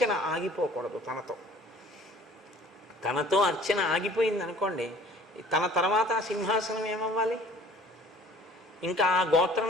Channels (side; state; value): both; normal; correlation 0.50